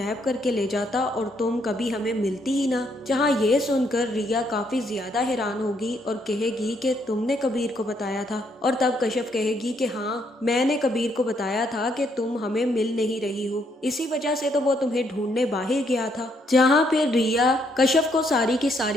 करके ले जाता और तुम कभी हमें मिलती ही ना। जहाँ ये सुनकर रिया काफी ज्यादा हैरान होगी और कहेगी कि तुमने कबीर को बताया था। और तब कश्यप कहेगी कि हाँ, मैंने कबीर को बताया था कि तुम हमें मिल नहीं रही हो, इसी वजह से तो वो तुम्हें ढूंढने बाहर गया था। जहाँ फिर रिया कश्यप को सारी की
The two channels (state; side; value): normal; both; correlation 0.72